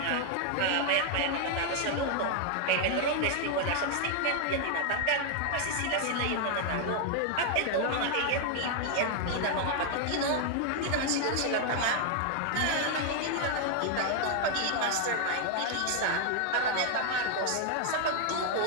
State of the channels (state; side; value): different; both; correlation 0.00